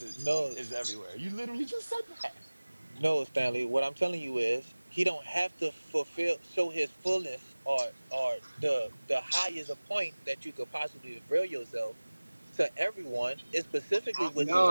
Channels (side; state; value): both; inverted; correlation -1.00